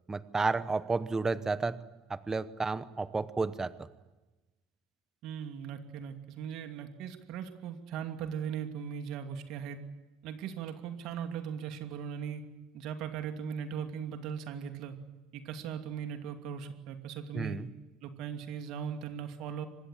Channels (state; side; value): quieter; left; 4.9 dB